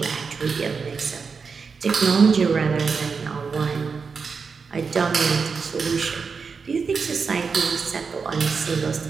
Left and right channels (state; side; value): quieter; left; 5.3 dB